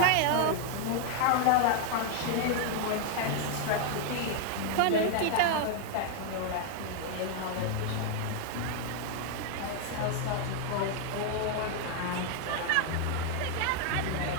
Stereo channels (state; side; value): different; both; correlation 0.00